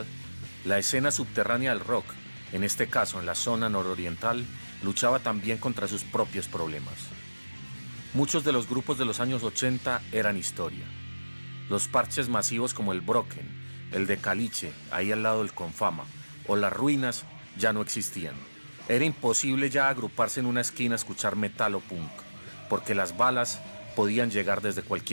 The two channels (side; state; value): both; inverted; correlation -1.00